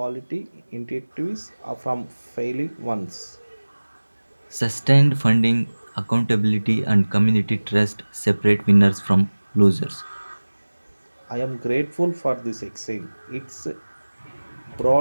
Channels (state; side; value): inverted; both; correlation -1.00